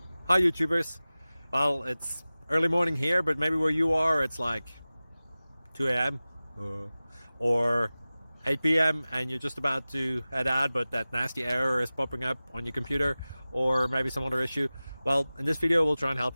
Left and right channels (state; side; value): inverted; both; correlation -0.97